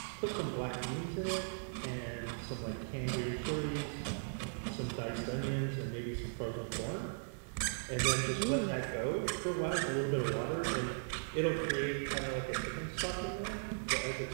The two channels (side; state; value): left; silent; digital silence